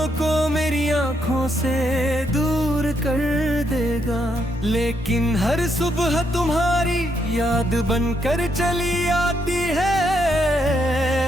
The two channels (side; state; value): both; normal; correlation 0.76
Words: को मेरी आंखों से दूर कर देगा, लेकिन हर सुबह तुम्हारी याद बनकर चली आती है।